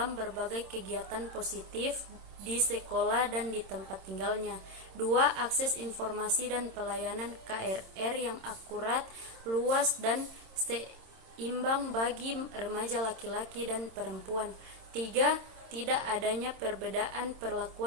berbagai kegiatan positif di sekolah dan di tempat tinggalnya. 2, akses informasi dan pelayanan KRR yang akurat, luas, dan seimbang bagi remaja laki-laki dan perempuan. 3, tidak adanya perbedaan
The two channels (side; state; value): left; late; 26 ms